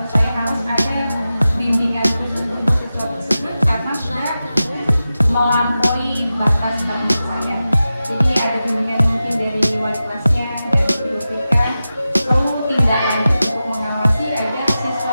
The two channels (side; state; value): both; inverted; correlation -0.93